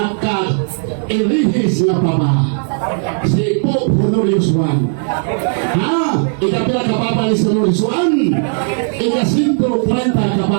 na papa, si Pope Honorius I. Ikapila ka papa ni Honorius I, ika-130 ka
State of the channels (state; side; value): silent; left; 67 dB below the other